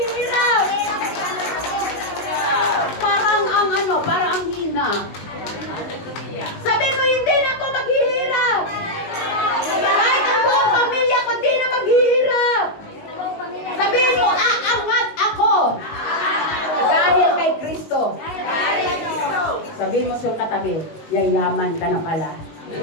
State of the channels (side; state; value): right; late; 19 ms